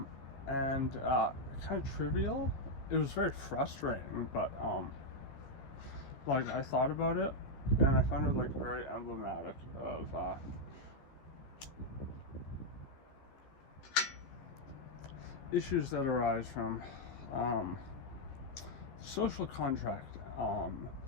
kind of trivial. It was very frustrating, but like I thought about it and I found it like very emblematic of issues that arise from social contract,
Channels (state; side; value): late; right; 15 ms